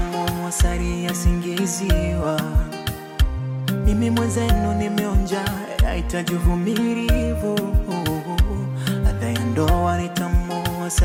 asali yasingiziwa. Mimi mwenzenu nimeonja, yahitaji uvumilivu. Ladha ya ndoa ni tamu,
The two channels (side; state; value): both; identical; correlation 1.00